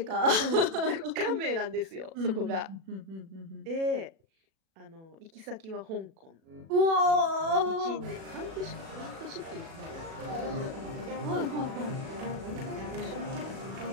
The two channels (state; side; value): late; left; 37 ms